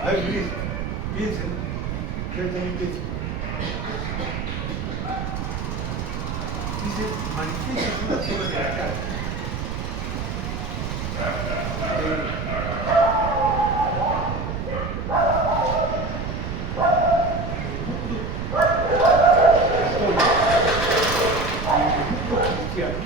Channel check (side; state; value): right; noise; rumble, 4 dB below the sound